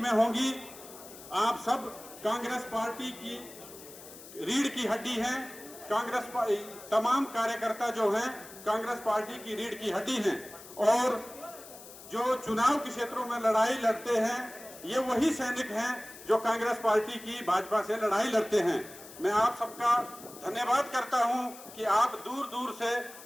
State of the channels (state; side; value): noise; left; hiss, 17 dB below the sound